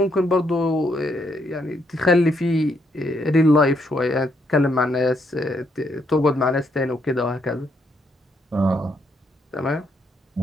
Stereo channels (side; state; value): both; normal; correlation 0.75